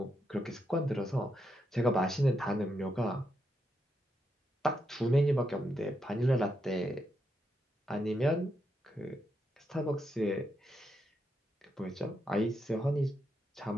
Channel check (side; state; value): both; normal; correlation 0.82